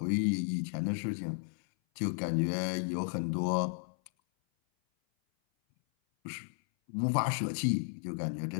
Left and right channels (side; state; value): right; silent; 56 dB below the other